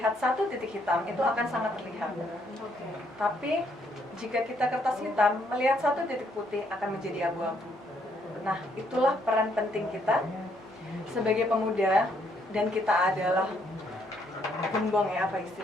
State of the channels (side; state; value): both; normal; correlation 0.71